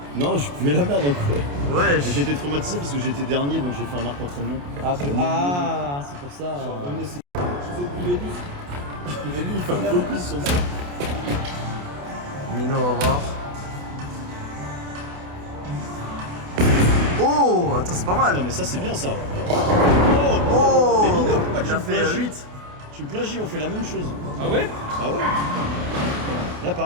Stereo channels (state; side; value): late; left; 28 ms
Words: Non, je fumais la merde en Corée. Wesh. J'étais traumatisé parce que j'étais dernier donc j'ai fait un arc entraînement. Ah, c'est pour ça. Mais lui il fait un focus sur ça. Mino, on va voir. Oh, attends, c'est pas mal. Attends mais ça c'est bien ça. Oh, Mais Mino, pourquoi tu il a me fait plagies 8. Tu me plagies, on fait la même chose. Ah ouais? Bah ouais. Là